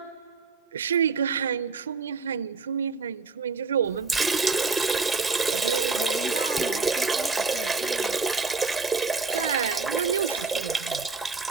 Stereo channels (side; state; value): left; quieter; 4.4 dB